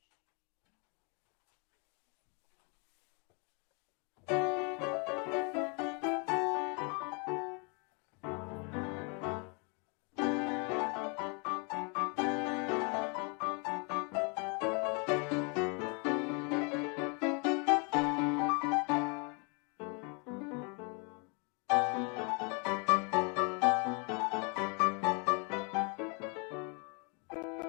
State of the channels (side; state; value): right; quieter; 34.2 dB